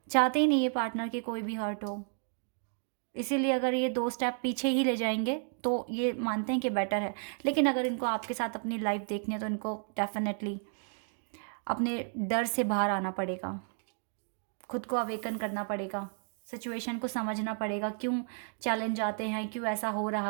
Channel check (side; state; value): left; silent; 56 dB below the other